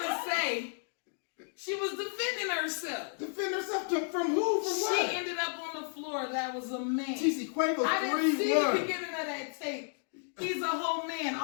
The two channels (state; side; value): silent; right; 56 dB below the other